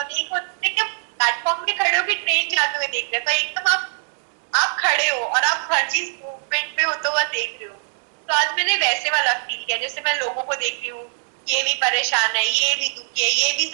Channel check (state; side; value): silent; left; 64 dB below the other